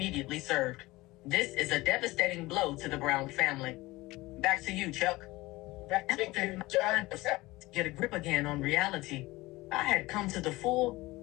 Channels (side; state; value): right; quieter; 20.0 dB